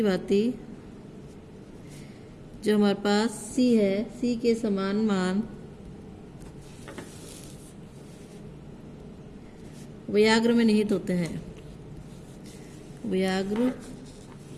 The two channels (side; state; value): both; identical; correlation 1.00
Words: भांति जो हमारे पास C है, C के समान मान उभयग्र में निहित होते हैं। उभयग्र